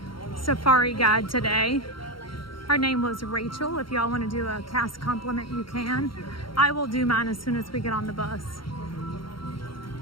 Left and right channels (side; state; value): right; late; 0.73 ms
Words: safari guide today. Her name was Rachel. If y'all want to do a cast compliment, you can. I will do mine as soon as we get on the bus.